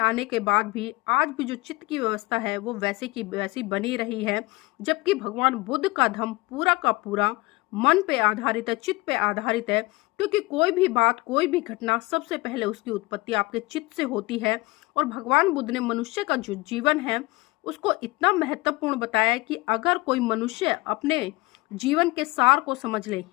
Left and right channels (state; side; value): quieter; right; 22.7 dB